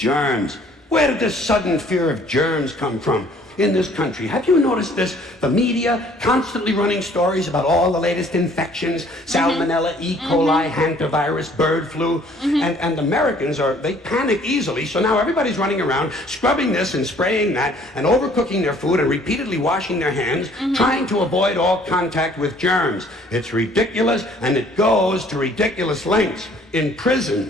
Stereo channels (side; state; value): both; normal; correlation 0.58